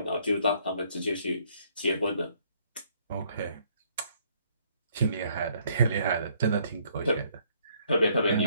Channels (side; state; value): both; inverted; correlation -0.66